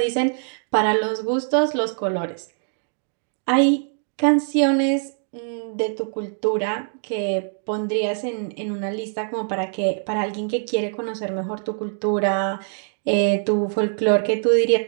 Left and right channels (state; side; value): silent; left; digital silence